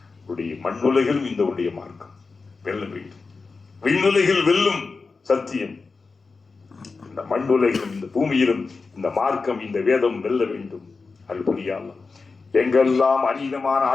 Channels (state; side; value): quieter; right; 4.3 dB